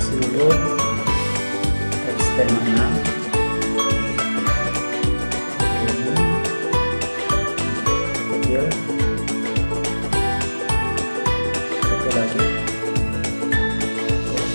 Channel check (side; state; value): both; inverted; correlation -1.00